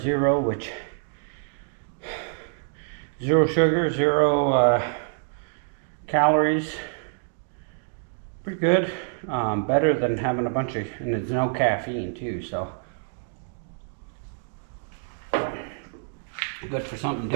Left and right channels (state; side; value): silent; left; 61 dB below the other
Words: Zero, which 0 sugar, 0 calories. Pretty good. Better than having a bunch of, and there's no caffeine too, so good for something